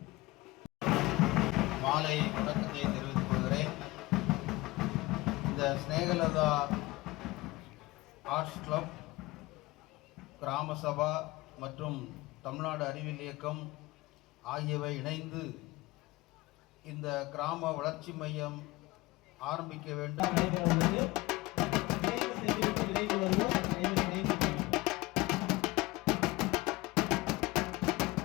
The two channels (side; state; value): right; quieter; 20.8 dB